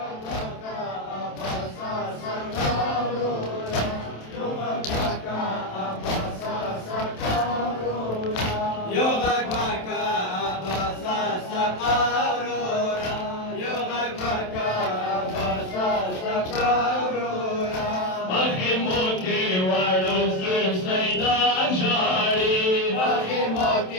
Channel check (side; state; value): right; late; 27 ms